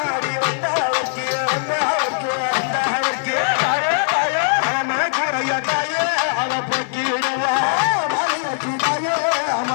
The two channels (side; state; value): right; silent; 56 dB below the other